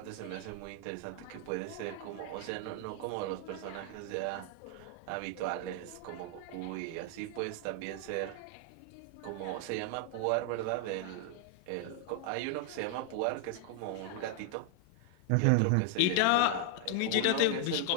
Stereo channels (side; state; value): both; different; correlation 0.00